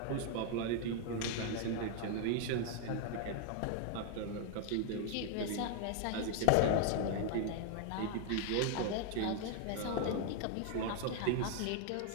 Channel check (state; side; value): different; both; correlation 0.00